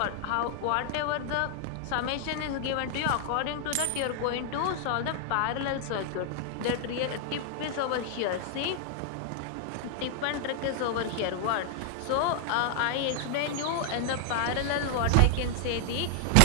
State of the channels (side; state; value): both; different; correlation 0.00